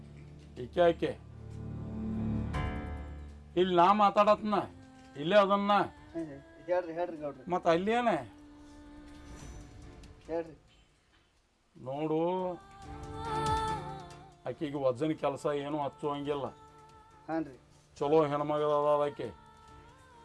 ಈಕೆ ಇಲ್ಲಿ ನಾ ಮಾತಾಡತ್ನ ಇಲ್ಲೇ ಅದನ್ನ ಮತ್ತು ಅಲ್ಲೇನೆ ನೋಡು. ಆಕೆಗೆ ವಜನ್ ಕೆಲಸ ಏನೂ ಹಚ್ಚುವಂಗಿಲ್ಲ. ಚಲೋ ಹೆಣ್ಮಗದ ಆಕೆ.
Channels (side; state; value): both; identical; correlation 1.00